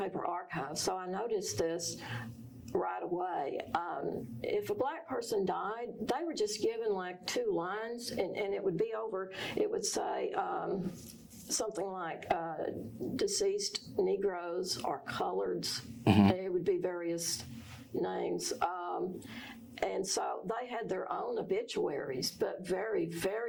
archives, so I noticed this right away. If a black person died, they were just given like 2 lines, and it would be over, it would say something like deceased Negroes or coloreds. It would be various names. And so they had their own obituaries, but very,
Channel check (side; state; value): both; identical; correlation 1.00